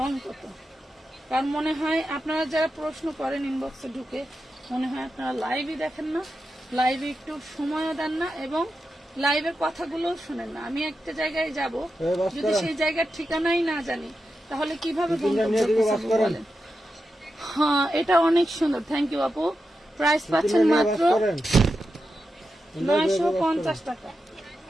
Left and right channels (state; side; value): normal; both; correlation 0.89